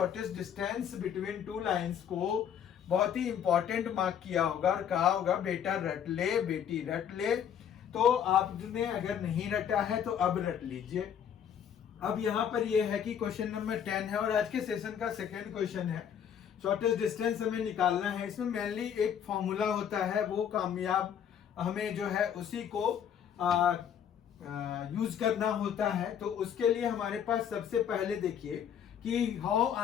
डिस्टेंस बिटवीन 2 लाइंस को बहुत ही इंपॉर्टेंट मार्क किया होगा और कहा होगा बेटा रट ले, बेटी रट ले। तो आपने अगर नहीं रटा है तो अब रट लीजिए। अब यहाँ पर यह है कि क्वेश्चन नंबर 10 है और आज के सेशन का सेकेंड क्वेश्चन है। शॉर्टेस्ट डिस्टेंस हमें निकालना है। इसमें मेनली एक फॉर्मूला होता है, वो कामयाब हमें जो है उसी को यूज करना होता है। तो उसके लिए हमारे पास सबसे पहले देखिए कि हाउ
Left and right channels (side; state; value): right; quieter; 8.7 dB